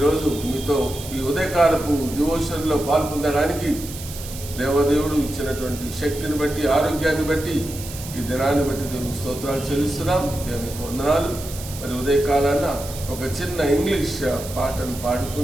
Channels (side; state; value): right; noise; hiss, 12 dB below the sound